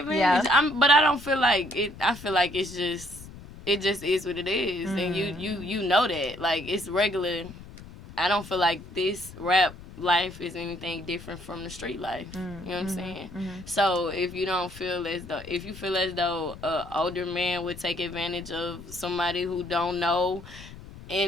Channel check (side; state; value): left; noise; rumble, 16 dB below the sound